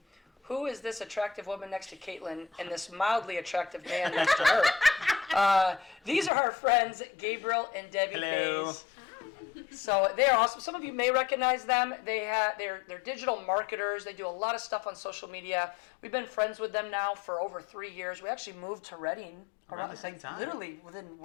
who is this attractive woman next to Caitlin and this mildly attractive man next to her? These are our friends, Gabriel and Debbie. Hello. Mays. So they are awesome. Some of you may recognize them. They're digital marketers. They do a lot of stuff on social media. We've been friends with them now for over 3 years. We actually moved to Reading around the same time. Literally within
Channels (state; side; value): drops out; right; at 6.3 s